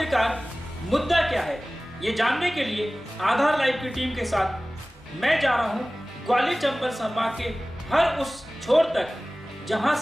मुद्दा क्या है, ये जानने के लिए आधार लाइव की टीम के साथ मैं जा रहा हूँ ग्वालियर चंबल संभाग के हर उस छोर तक जहां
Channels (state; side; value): normal; both; correlation 0.98